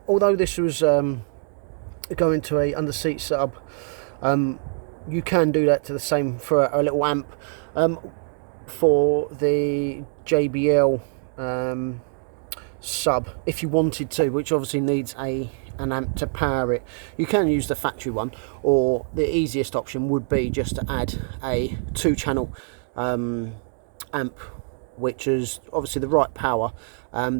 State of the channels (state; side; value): silent; left; 62 dB below the other